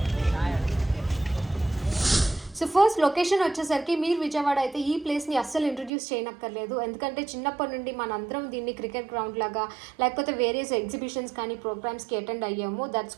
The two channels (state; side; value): drops out; left; at 5.9 s